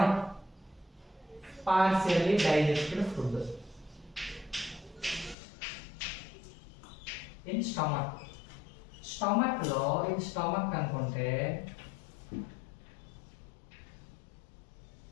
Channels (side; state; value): right; drops out; at 5.4 s